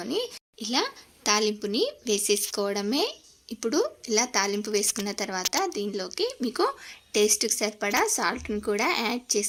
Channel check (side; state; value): both; identical; correlation 1.00